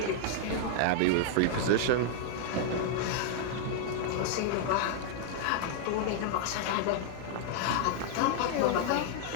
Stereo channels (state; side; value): different; both; correlation -0.01